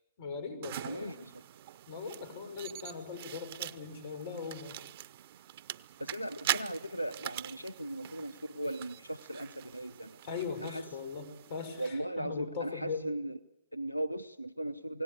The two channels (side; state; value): both; inverted; correlation -0.64